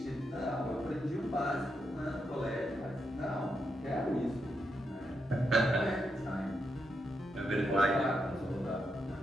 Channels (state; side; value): normal; both; correlation 0.83